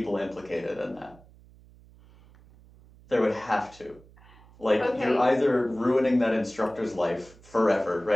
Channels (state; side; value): noise; right; hum, 25 dB below the sound